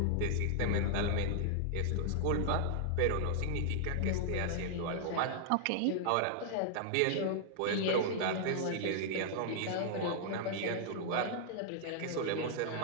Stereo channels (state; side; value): different; both; correlation -0.01